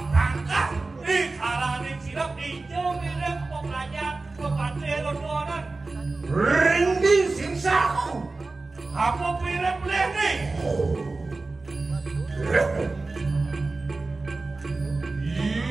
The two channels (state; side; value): quieter; left; 3.5 dB